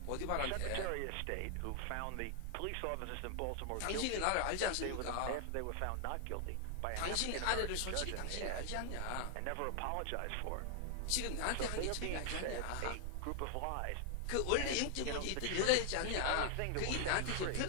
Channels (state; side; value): different; both; correlation 0.00